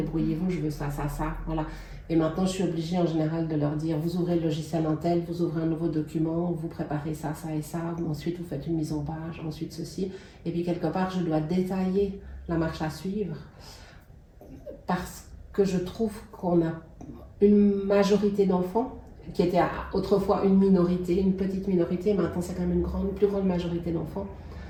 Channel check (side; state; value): both; identical; correlation 1.00